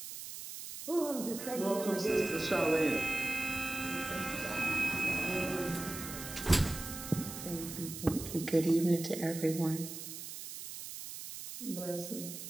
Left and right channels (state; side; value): noise; right; hiss, 9 dB below the sound